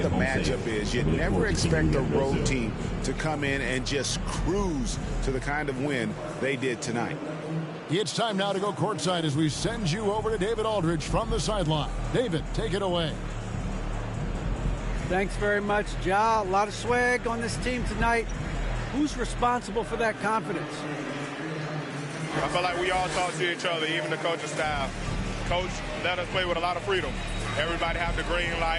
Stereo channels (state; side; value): identical; both; correlation 1.00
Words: matchup is. You never expect a road team to come in and just cruise to the kind of win they did tonight. It's time now to go courtside as we send you over to David Aldridge from the sideline. David, take it away. Thanks very much, Ja. A lot of swag on this team tonight. Who's responsible for that confidence? I feel like we all talk to each other, even the coaching staff. Coach let us play with a lot of freedom. Everybody have the green